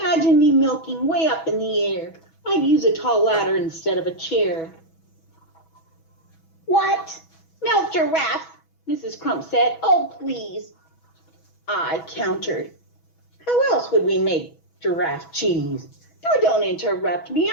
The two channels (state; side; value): late; right; 6.1 ms